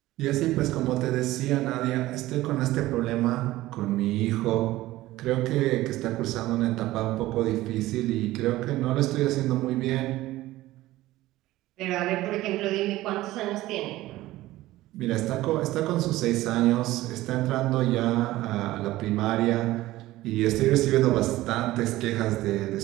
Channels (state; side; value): quieter; left; 16.7 dB